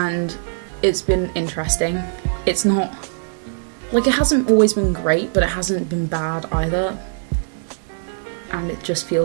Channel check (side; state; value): left; silent; digital silence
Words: it's been interesting. It's not, like, it hasn't always been great, but it hasn't been bad either. And it just